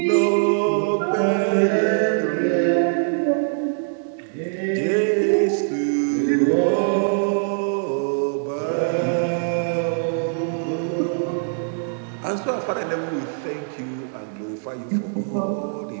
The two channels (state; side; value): silent; left; 64 dB below the other